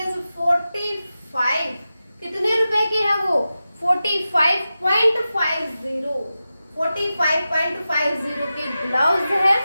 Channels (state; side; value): inverted; both; correlation -0.93